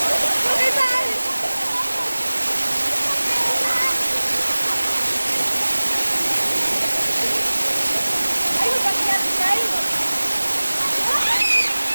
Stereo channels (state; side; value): inverted; both; correlation -1.00